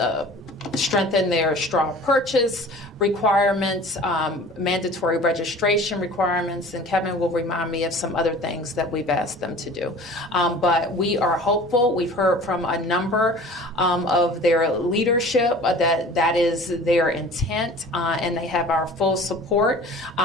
strengthen their straw purchase requirements, mandatory registration requirements, and Kevin will remind me of some other things that we've asked them to do. But we are hopeful. We've heard from a number of their leadership that is their intent, and they have our full support.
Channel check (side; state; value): both; normal; correlation 0.44